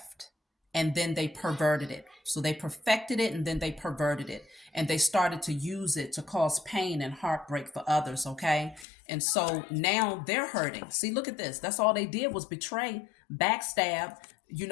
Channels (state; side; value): drops out; right; at 8.8 s